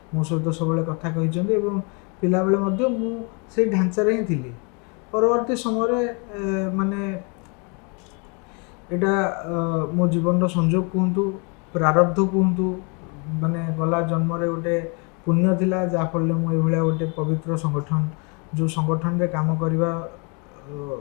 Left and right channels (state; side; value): quieter; right; 33.8 dB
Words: ମୋ ସହିତ ସବୁବେଳେ କଥା କହିଛନ୍ତି ଏବଂ ପିଲାବେଳେ ମଧ୍ୟ ମୁଁ ସେଇ ଢାଞ୍ଚାରେ ହିଁ ଥିଲି। ପରବର୍ତ୍ତୀ ସମୟରେ ମାନେ ଏଇଟା ମୋ ଜୀବନର ସଂଯୋଗ କୁହନ୍ତୁ, ପ୍ରାରବ୍ଧ କୁହନ୍ତୁ, ମାନେ ଗଲା ଜନ୍ମରେ ଗୋଟେ ପୁଣ୍ୟ ଥିଲା ଯାହାଫଳରେ ମୁଁ ଏଇଭଳିଆ ଗୋଟେ ପବିତ୍ର ସଂଗଠନ ଯେଉଁ ସଂଗଠନରେ କାମ କରିବା